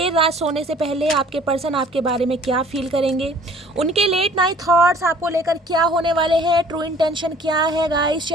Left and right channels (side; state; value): both; normal; correlation 0.53